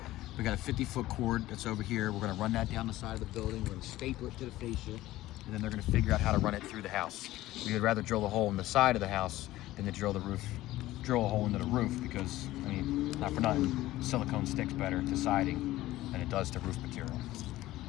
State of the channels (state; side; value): quieter; right; 16.2 dB